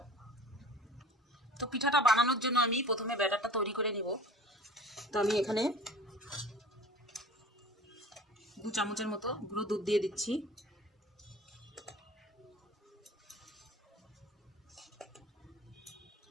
তো পিঠাটা বানানোর জন্য আমি প্রথমে ব্যাটারটা তৈরি করে নিব। তো আমি এখানে 2 চামচের মতো গুঁড়ো দুধ দিয়ে দিচ্ছি।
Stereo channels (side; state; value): both; normal; correlation 0.42